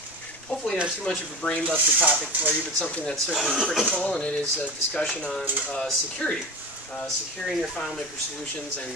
hopefully not too much of a brain buster topic for you, but something that's certainly critical, and it is a discussion on security. Securing your FileMaker solutions, and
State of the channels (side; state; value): both; normal; correlation 0.27